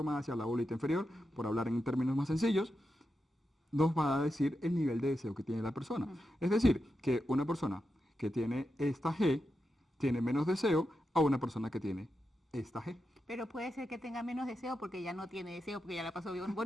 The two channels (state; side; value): normal; both; correlation 0.88